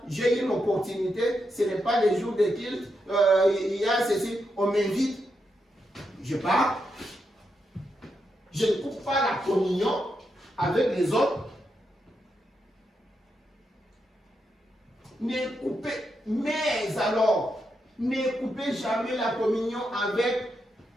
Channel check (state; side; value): normal; both; correlation 0.84